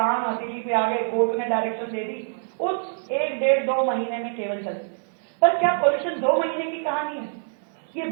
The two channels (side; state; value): left; silent; digital silence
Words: हथेली पे आ गए, कोर्ट ने डायरेक्शन दे दी, उस 1-1.5-2 महीने में केवल चलती। पर क्या पॉल्यूशन 2 महीने की कहानी है? ये